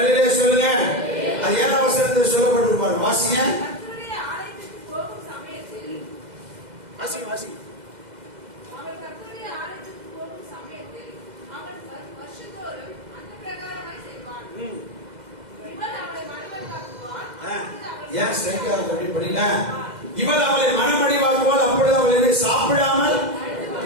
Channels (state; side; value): late; left; 2.0 ms